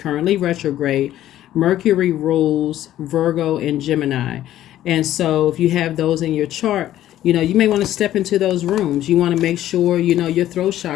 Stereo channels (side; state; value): right; quieter; 12.9 dB